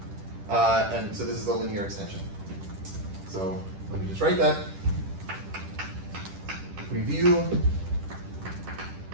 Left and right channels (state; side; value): late; left; 10 ms